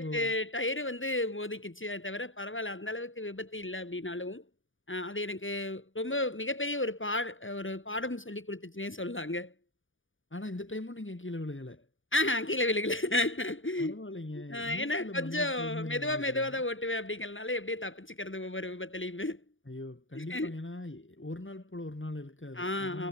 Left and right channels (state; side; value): late; right; 0.57 ms